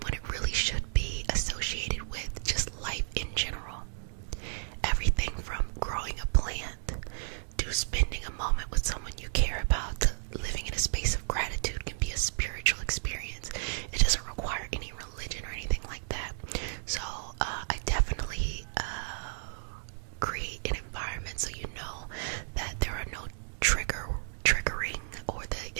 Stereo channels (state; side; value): silent; left; digital silence